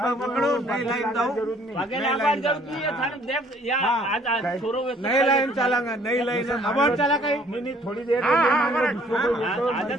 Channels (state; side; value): normal; both; correlation 0.59